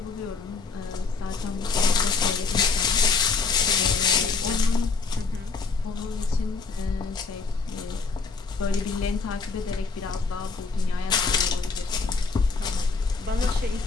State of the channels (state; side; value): quieter; right; 4.5 dB